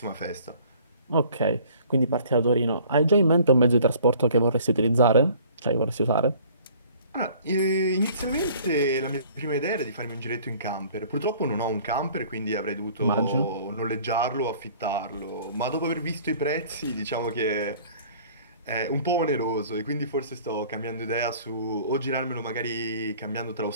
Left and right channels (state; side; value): inverted; both; correlation -0.52